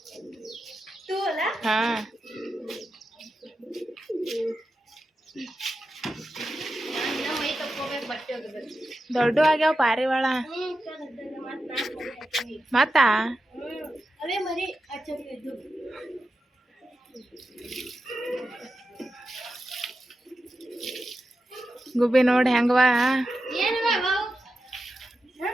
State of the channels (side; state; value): both; normal; correlation 0.90